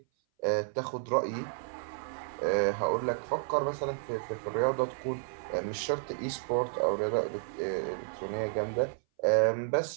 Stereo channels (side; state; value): left; silent; 57 dB below the other